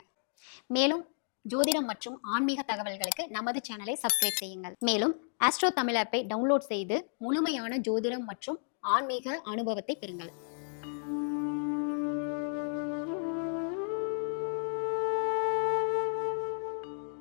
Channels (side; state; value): right; silent; digital silence